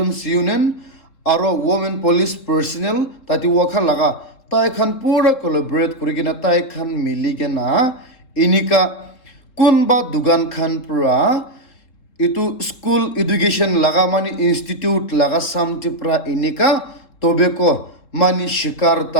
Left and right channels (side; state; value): right; late; 3.7 ms